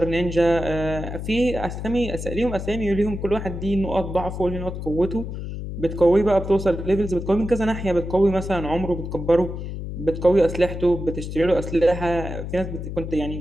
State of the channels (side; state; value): left; noise; hum, 7 dB below the sound